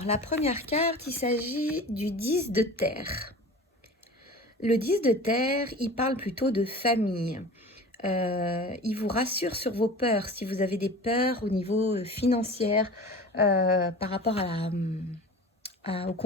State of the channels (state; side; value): normal; both; correlation 0.37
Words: la première carte, il s'agit du 10 de terre. Le 10 de terre, il parle plutôt de famille. Il vous rassure sur vos peurs. Si vous avez des peurs au niveau financier par rapport au